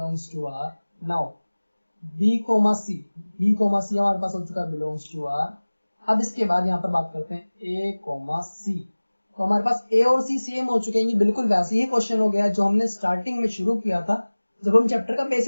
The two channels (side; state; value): both; inverted; correlation -1.00